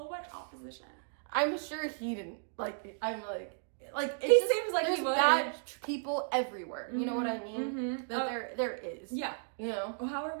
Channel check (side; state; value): left; silent; digital silence